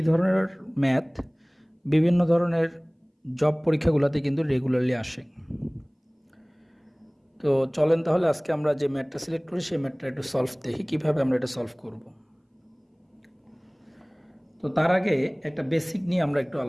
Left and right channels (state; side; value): identical; both; correlation 1.00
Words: ধরনের ম্যাথ বিভিন্ন ধরনের জব পরীক্ষাগুলোতে কিন্তু রেগুলারলি আসে। তো চলেন তাহলে আজকে আমরা যে ম্যাথটা সিলেক্ট করি সেই ম্যাথটা একটু সলভ দেখি কীভাবে আমরা এটা সলভ করব। তো তার আগে একটা বেসিক নিয়ে আমরা একটু